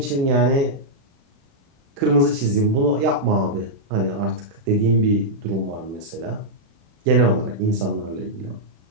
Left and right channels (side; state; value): left; late; 36 ms